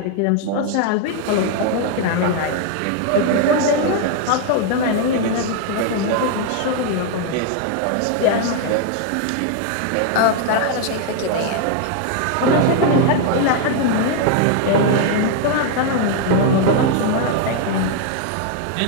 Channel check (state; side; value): different; both; correlation 0.00